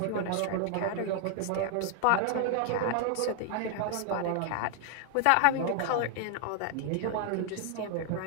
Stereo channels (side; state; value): both; different; correlation 0.00